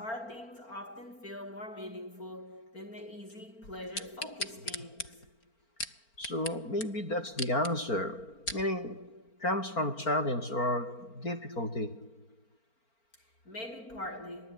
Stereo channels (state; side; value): late; right; 4.4 ms